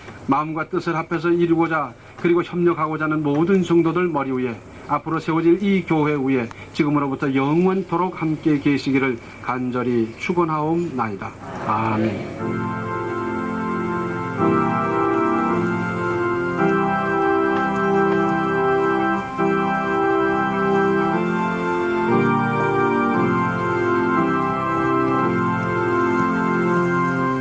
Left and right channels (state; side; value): identical; both; correlation 1.00